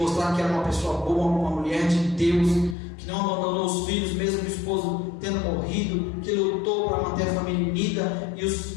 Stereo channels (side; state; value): right; drops out; at 2.8 s